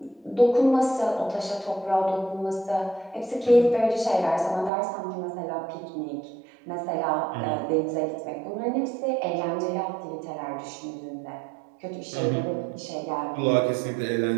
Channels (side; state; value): left; drops out; at 4.7 s